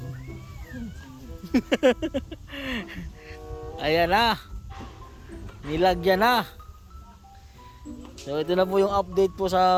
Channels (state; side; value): identical; both; correlation 1.00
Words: Ayan na. Nilagyan na. So ito na po yung update po